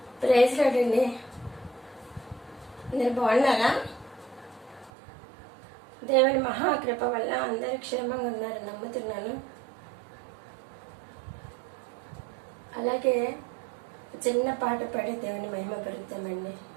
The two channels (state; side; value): drops out; left; at 4.9 s